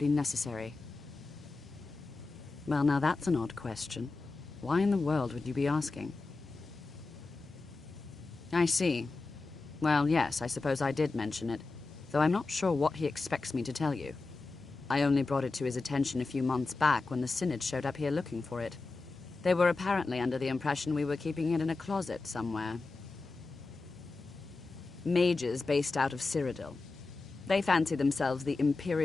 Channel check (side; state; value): right; quieter; 3.7 dB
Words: necessary. Well, now that's an odd question. Why in the world would you be asking? I see. Well, yes, I suppose I did mention it, though I'm not sure what he expects me to tell you. I only brought it to his attention a few months back when the Synod showed up here looking for it. They were apparently under the impression we were keeping it in a closet somewhere. Mages based out of Cyrodiil. They fancy themselves the